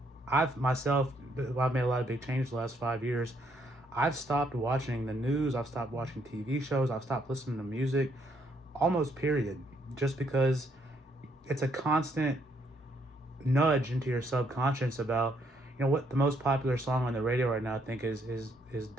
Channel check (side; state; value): both; normal; correlation 0.71